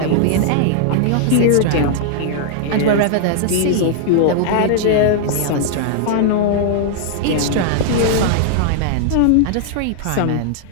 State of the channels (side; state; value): both; different; correlation -0.01